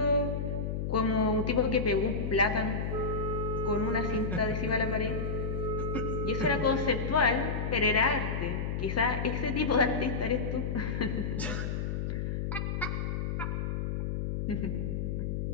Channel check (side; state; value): left; noise; hum, 1 dB below the sound